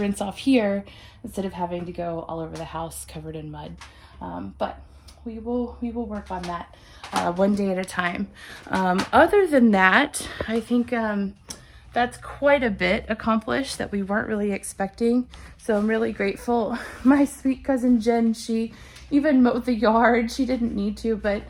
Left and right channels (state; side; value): identical; both; correlation 1.00